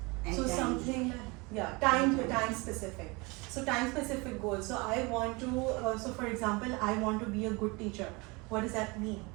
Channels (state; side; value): quieter; left; 26.4 dB